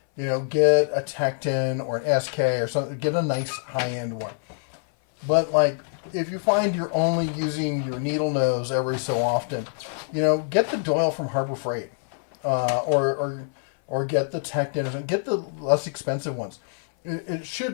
get a Tecton or an SK or something. Get a nice high-end one. But if you find you're only using your needle nose every so often, get the Doyle from Harbor Freight, or get the Tecton or something. Get the less expensive ones. It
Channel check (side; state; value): right; silent; 62 dB below the other